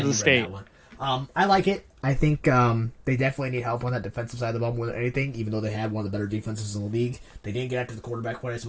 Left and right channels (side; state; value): both; identical; correlation 1.00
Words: State. I like it. I think they definitely need help on that defensive side of the ball more than anything, even though they had one of the better defenses in the league. They didn't get after the quarterback quite as